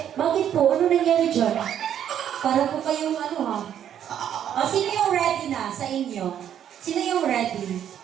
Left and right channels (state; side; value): quieter; left; 9.8 dB